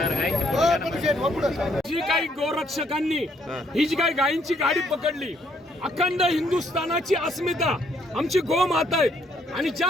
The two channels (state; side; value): normal; both; correlation 0.69